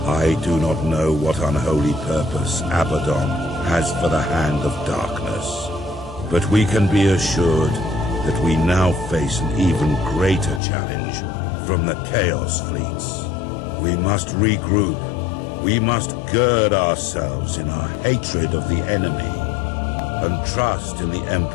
I do not know what unholy purpose Abaddon has for the Hand of Darkness, but we can be assured that we now face an even greater challenge from the Chaos fleets. We must regroup. We must gird ourselves in our hatred of the enemy and trust in the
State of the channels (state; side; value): drops out; right; at 10.6 s